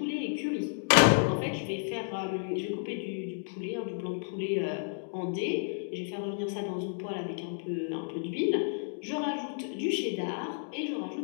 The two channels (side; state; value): right; silent; digital silence